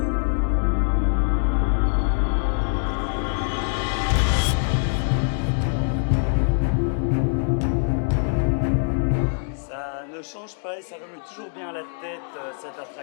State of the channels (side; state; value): right; silent; 63 dB below the other